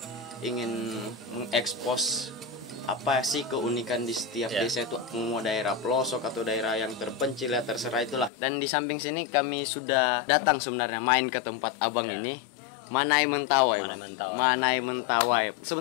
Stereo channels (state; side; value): drops out; right; at 8.3 s